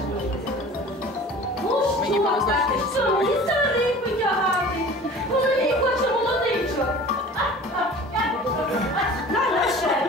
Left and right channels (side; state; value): both; normal; correlation 0.42